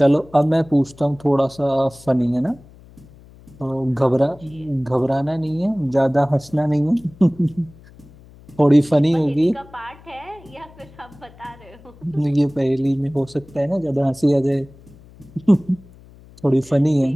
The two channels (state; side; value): noise; left; hum, 23 dB below the sound